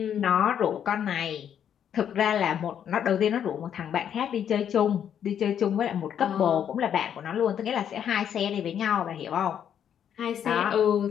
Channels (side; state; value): right; quieter; 9.0 dB